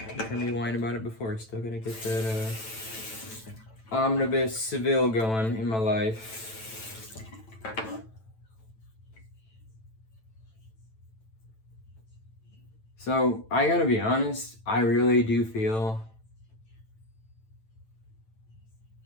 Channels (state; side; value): late; right; 9.0 ms